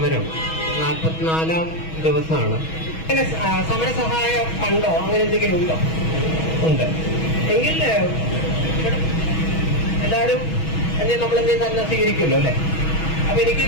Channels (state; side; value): late; right; 6.2 ms